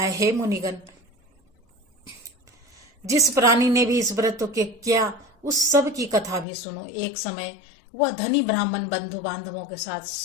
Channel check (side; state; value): right; drops out; at 6.5 s